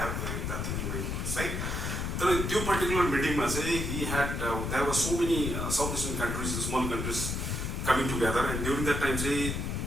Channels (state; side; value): noise; left; rumble, 2 dB below the sound